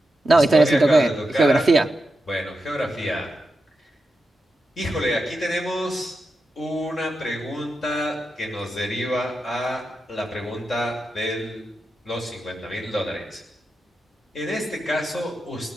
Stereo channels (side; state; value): both; normal; correlation 0.89